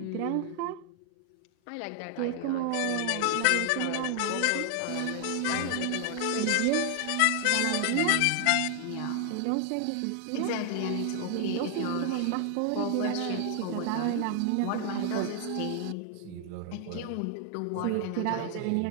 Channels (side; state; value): both; different; correlation 0.00